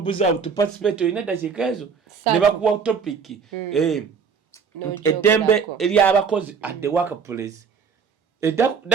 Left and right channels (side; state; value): left; quieter; 6.1 dB